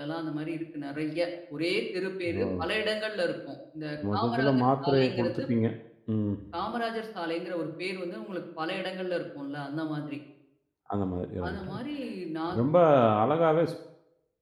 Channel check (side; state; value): both; identical; correlation 1.00